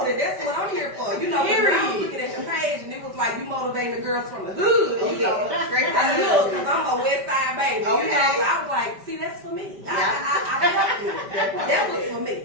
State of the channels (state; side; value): late; left; 5.1 ms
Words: and that's what I'm here for. You know, I was looking at your page, and it was like you motivating the girls from the hood. You know, straight from I the know, hood. because I'm a West Side baby. Okay. You know, so I was like, see, that's for me. I felt it. That was for me.